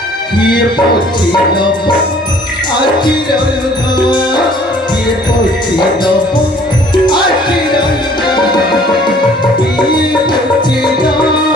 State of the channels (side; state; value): both; normal; correlation 0.55